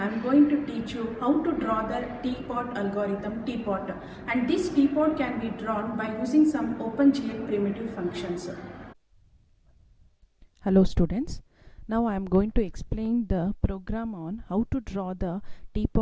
am going to teach you how to draw the Teapot algorithm, Teapot. And this Teapot can be drawn by using some OpenGL primitive functions. Hello students, now I am going to explain the program on how to draw the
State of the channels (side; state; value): both; identical; correlation 1.00